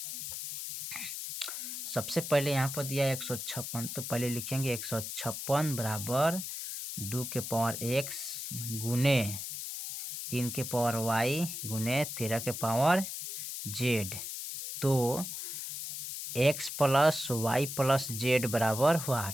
सबसे पहले यहाँ पर दिया है 156, तो पहले लिखेंगे 156 बराबर 2 के पावर x गुने 3 के पावर y गुने 13 के पावर z, तो x plus y plus z बराबर हुआ।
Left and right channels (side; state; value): left; noise; hiss, 6 dB below the sound